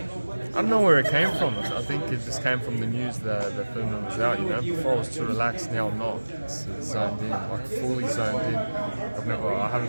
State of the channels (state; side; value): inverted; both; correlation -1.00